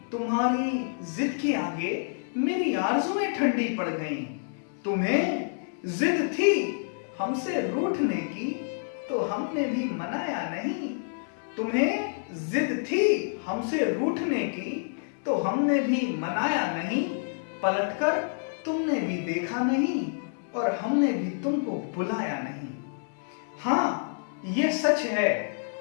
तुम्हारी जिद के आगे मेरी आरज़ुएं ठंडी पड़ गई। तुम्हें जिद थी हमसे रूठने की, तो हमने भी मनाया नहीं। तुम्हें जिद थी हमसे रूठने की, तो हमने भी मनाया नहीं। पलटकर तुमने भी देखा नहीं, और हमने भी तुमको बुलाया नहीं। हाँ, ये सच है,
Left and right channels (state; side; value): silent; right; 59 dB below the other